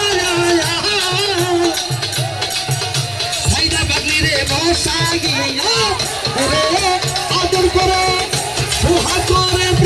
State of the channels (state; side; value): noise; left; rumble, 25 dB below the sound